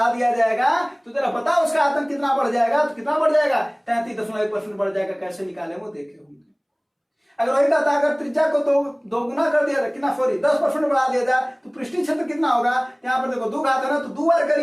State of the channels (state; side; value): identical; both; correlation 1.00